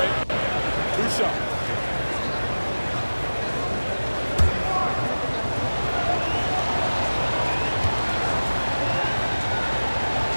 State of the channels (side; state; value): both; inverted; correlation -1.00